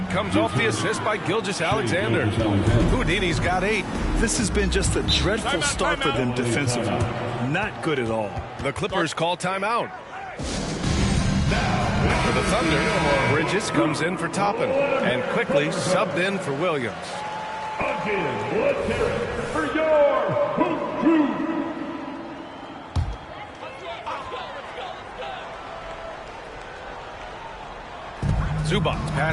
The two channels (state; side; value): identical; both; correlation 1.00